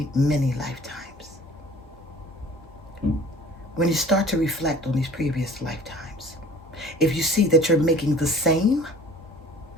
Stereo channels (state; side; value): normal; both; correlation 0.47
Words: many lifetimes, when you start to reflect on these previous lifetimes, if you see that you're making the same